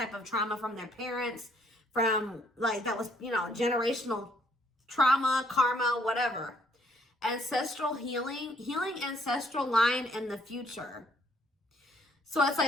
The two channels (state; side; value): normal; both; correlation 0.66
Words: of trauma from their parents, from like that was, you know, generational trauma, karma, whatever. Ancestral healing ancestral line in the future. So it's